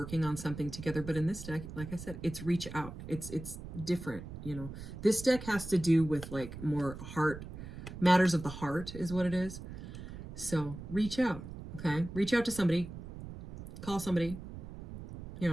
on something together. But in this deck, like I said, it's reach out. It's different, you know. This deck has to do with like more heart, matters of the heart is what it is. So reach out, okay? Reach out to somebody. Call somebody, you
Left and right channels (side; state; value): right; noise; rumble, 11 dB below the sound